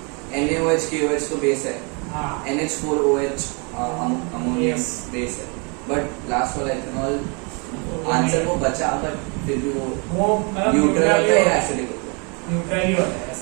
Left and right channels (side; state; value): left; quieter; 33.5 dB